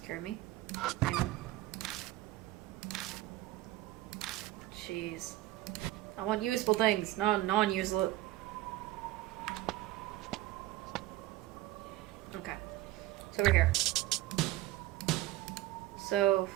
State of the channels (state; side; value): quieter; left; 16.4 dB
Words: me. Jeez. I want useful things, not non-useless. Okay. It's over here. So...